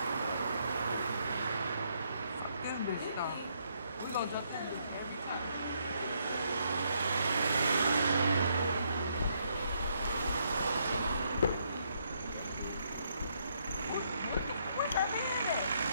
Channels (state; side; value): inverted; both; correlation -0.74